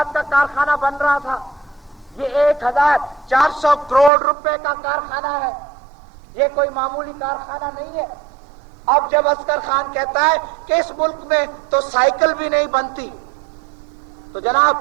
کا کارخانہ بن رہا تھا؟ یہ 1400 کروڑ روپے کا کارخانہ ہے، یہ کوئی معمولی کارخانہ نہیں ہے۔ اب جب اصغر خان کہتا ہے کہ اس ملک میں تو سائیکل بھی نہیں بنتی، تو جناب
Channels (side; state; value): left; drops out; at 4.1 s